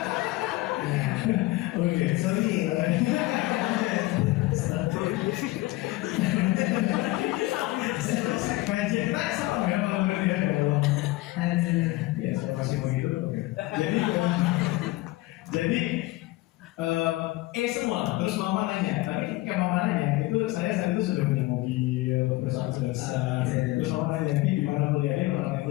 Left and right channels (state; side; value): quieter; right; 19.3 dB